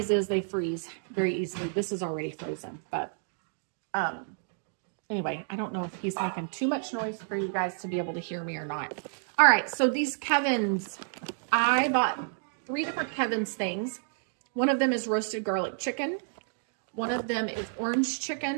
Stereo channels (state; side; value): silent; left; digital silence